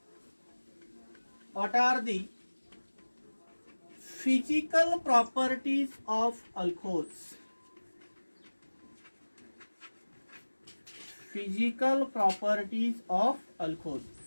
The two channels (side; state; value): both; inverted; correlation -1.00